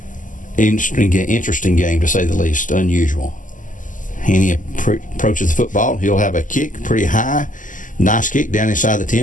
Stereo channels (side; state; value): right; late; 0.38 ms